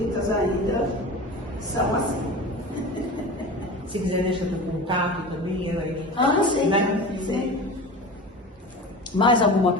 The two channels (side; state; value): both; normal; correlation 0.33